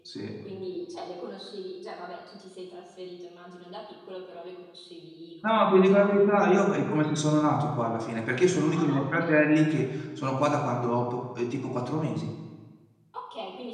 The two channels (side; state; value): both; identical; correlation 1.00